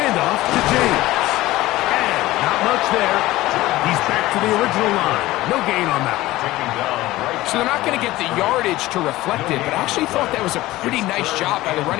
to James. And not much there. He's back to the original line. No gain on that. So they're not going to get the yardage to reflect it, but I actually thought that was a pretty nice job by the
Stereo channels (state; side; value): quieter; right; 17.4 dB